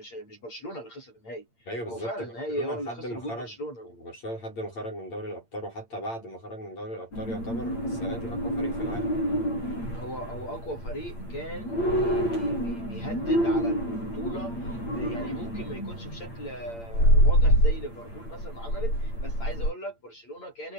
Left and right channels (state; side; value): late; right; 8.7 ms